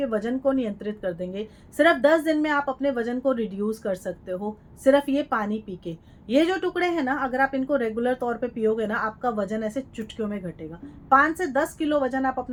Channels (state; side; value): identical; both; correlation 1.00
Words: वजन को नियंत्रित कर देंगे। सिर्फ 10 दिन में आप अपने वजन को रिड्यूस कर सकते हो, सिर्फ ये पानी पी के। ये जो टुकड़े हैं ना, अगर आप इनको रेगुलर तौर पे पियोगे ना, आपका वजन ऐसे चुटकियों में घटेगा। 5 से 10 किलो वजन आप